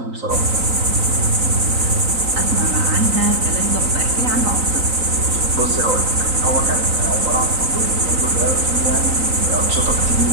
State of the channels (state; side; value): late; left; 3.9 ms